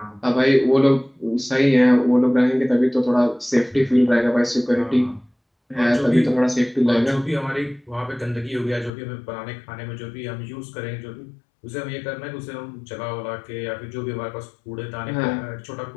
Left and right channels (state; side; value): drops out; right; at 8.9 s